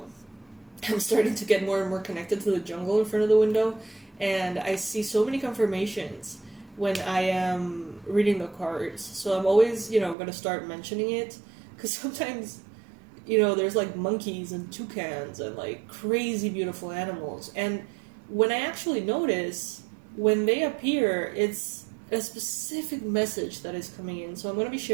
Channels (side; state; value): left; drops out; at 10.2 s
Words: I'm starting to get more and more connected to the jungle in front of the window, and I see so many confirmations when I am reading the cards. So I'm always, going to start mentioning it, because sometimes, there's like monkeys and toucans and like crazy beautiful animals. And when I actually notice, when they appear, it's a specific message that is coming in. So I'm going to be